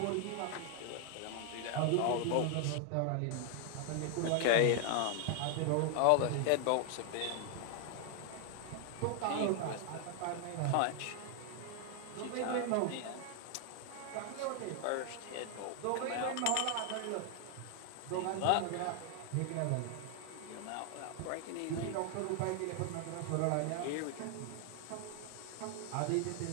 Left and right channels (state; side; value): different; both; correlation 0.00